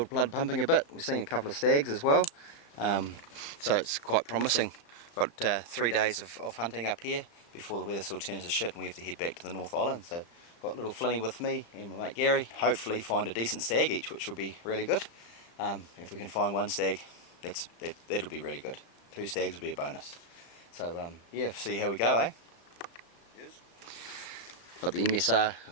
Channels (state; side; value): late; right; 35 ms